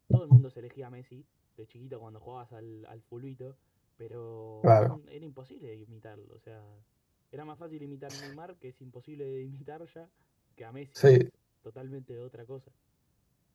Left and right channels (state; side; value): identical; both; correlation 1.00